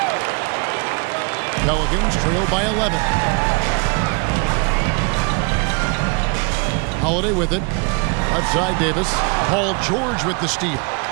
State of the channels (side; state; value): left; quieter; 31.7 dB